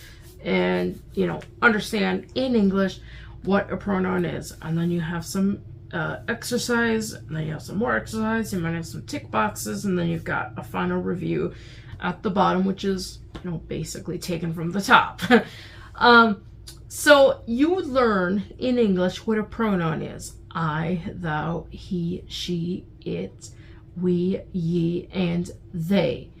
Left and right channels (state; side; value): identical; both; correlation 1.00